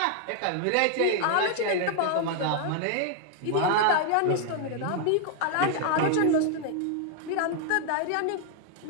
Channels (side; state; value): both; different; correlation 0.00